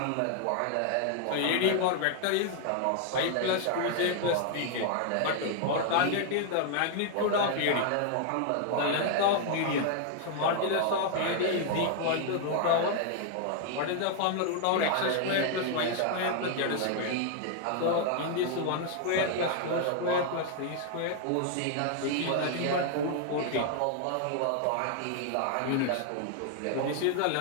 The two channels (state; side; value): different; both; correlation 0.00